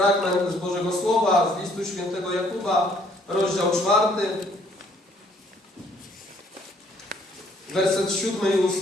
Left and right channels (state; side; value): normal; both; correlation 0.63